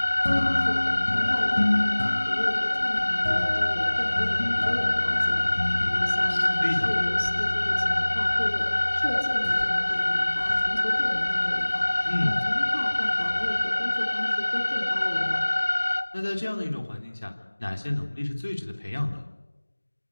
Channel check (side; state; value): both; inverted; correlation -1.00